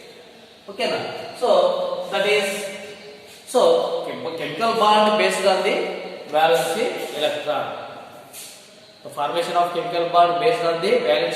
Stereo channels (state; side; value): identical; both; correlation 1.00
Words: Okay now. So that is chemical bond based on the valency electron. The formation of chemical bond based on the